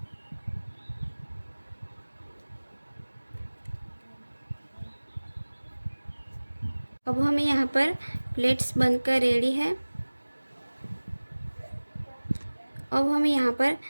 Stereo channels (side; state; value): both; inverted; correlation -1.00